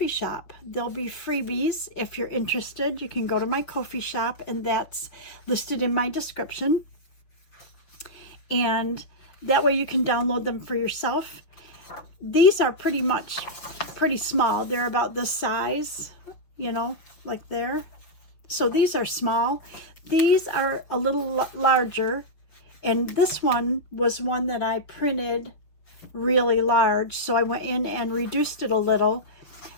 shop. They'll be freebies. If you're interested, you can go to my Ko-fi shop, and that's listed in my description. And that way you can download them for yourself. These are pretty small. They're about this size, you know, like there. So these are small. These are a little larger. And this one was one that I printed really large, so I went in and reduced it a little,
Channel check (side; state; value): right; late; 6.0 ms